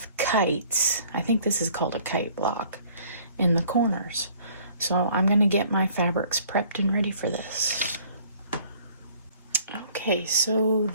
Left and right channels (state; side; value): inverted; both; correlation -0.56